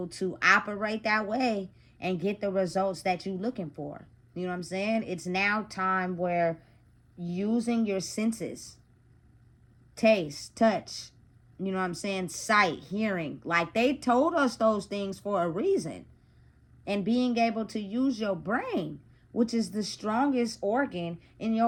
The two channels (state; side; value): identical; both; correlation 1.00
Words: to operate that way and get the results that you're looking for. You know what I'm saying? It's now time where using your senses, taste, touch, you know what I'm saying, sight, hearing, like, they told us those things for a reason. And being able to use your brain, which is the strongest organ in